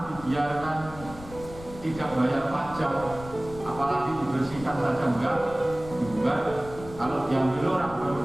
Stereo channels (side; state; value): left; noise; rumble, 15 dB below the sound